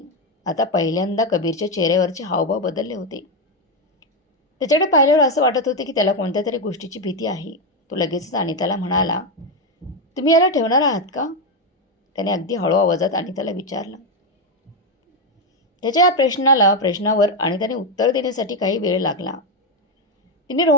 आता पहिल्यांदा कबीरच्या चेहऱ्यावरचे हावभाव बदलले होते. त्याच्याकडे पाहिल्यावर असं वाटत होते की त्याला कोणत्या तरी गोष्टीची भीती आहे. तो लगेचच अनिताला म्हणाला, तुम्ही याला ठेवणार आहात का? त्याने अगदी हळू आवाजात अनिताला विचारलं. त्याच्या या प्रश्नावर अनिताने उत्तर देण्यासाठी काही वेळ लागला. तिने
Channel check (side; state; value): both; normal; correlation 0.07